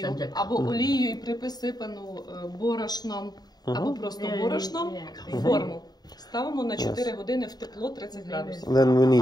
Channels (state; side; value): late; right; 0.19 ms